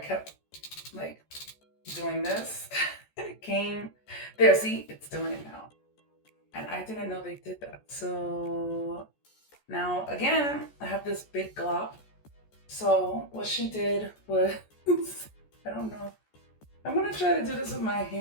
like doing this. It came there, see, it's doing it now. And I didn't know they did that. So now again, I have this big glop. So what she did was, I don't know. I'm gonna try to do this with my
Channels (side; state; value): right; late; 14 ms